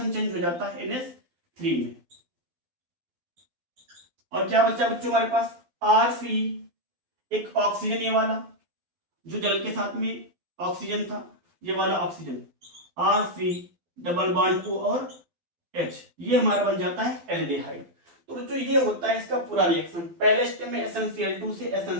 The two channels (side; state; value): left; late; 12 ms